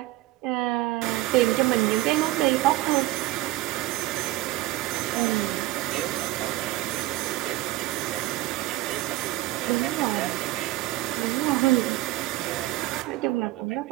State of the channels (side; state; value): left; quieter; 17.0 dB